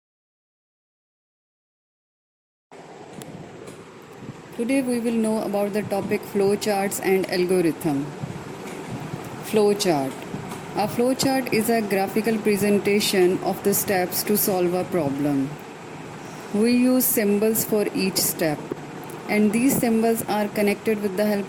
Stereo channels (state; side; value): identical; both; correlation 1.00